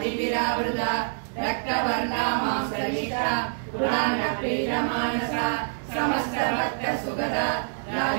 रक्तवर्णा मांसलिता पुराणप्रीतमानसा समस्तभक्तसुगदा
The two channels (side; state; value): left; silent; digital silence